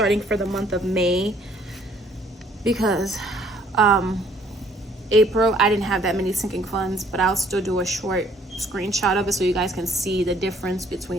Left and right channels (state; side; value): normal; both; correlation 0.61